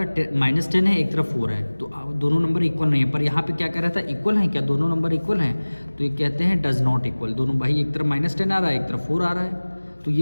-10 है, एक तरफ 4 है, तो दोनों नंबर इक्वल नहीं है। पर यहाँ पे क्या कह रहा था? इक्वल हैं क्या? दोनों नंबर इक्वल हैं, तो ये कहते हैं डज नॉट इक्वल। दोनों भाई, एक तरफ -10 आ रहा है, एक तरफ 4 आ रहा है, तो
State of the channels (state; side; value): inverted; both; correlation -1.00